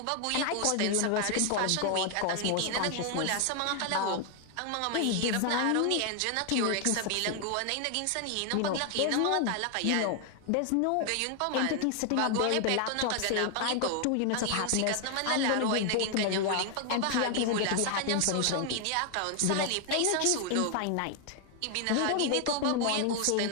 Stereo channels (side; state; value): both; different; correlation 0.00